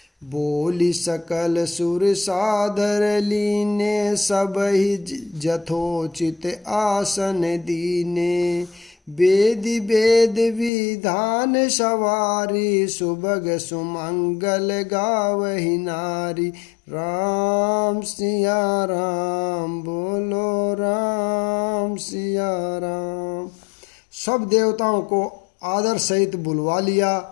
बोली सकल सुर सादर लीने, सब ही जथोचित आसन दीने। वेद वेद विधान सवारी, सुभग सुमंगल गावहि नारी। राम सिया राम, बोलो राम सिया राम। सब देवताओं को आदर सहित बुलवा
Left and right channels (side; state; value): right; drops out; at 10.7 s